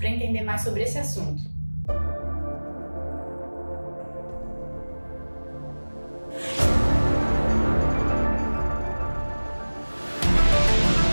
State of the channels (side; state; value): both; inverted; correlation -1.00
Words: entender mais sobre esse assunto.